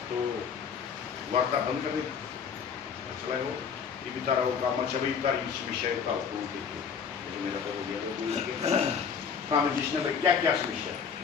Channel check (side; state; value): right; quieter; 6.7 dB